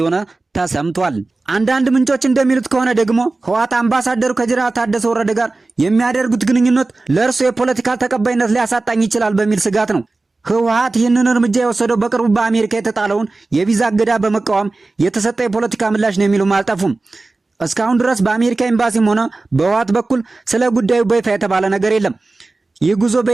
ተሰምቷል። አንዳንድ ምንጮች እንደሚሉት ከሆነ ደግሞ ህወሓት አምባሳደሩ ከጀነራል ታደሰ ወረደ ጋር የሚያደርጉት ግንኙነት ለእርሱ የፖለቲካ ተቀባይነት ሊያሳጣኝ ይችላል በሚል ስጋት ነው። ህወሓት ይህንን እርምጃ የወሰደው በቅርቡ በአሜሪካ የተጣለውን የቪዛ እገዳ በመቃወም የተሰጠ የፖለቲካ ምላሽ ነው የሚሉም አልጠፉም። እስካሁን ድረስ በአሜሪካ ኤምባሲም ሆነ በህወሓት በኩል ስለ ጉዳዩ በይፋ የተባለ ነገር የለም። ይህ ጉዞ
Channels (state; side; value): quieter; left; 3.3 dB